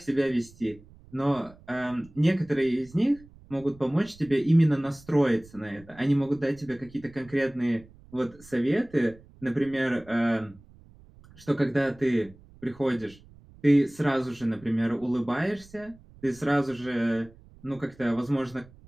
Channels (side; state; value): right; noise; rumble, 24 dB below the sound